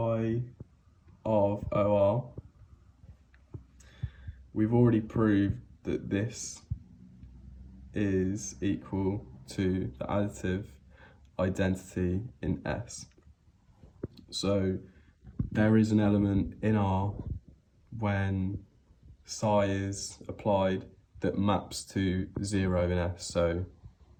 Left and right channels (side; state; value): both; identical; correlation 1.00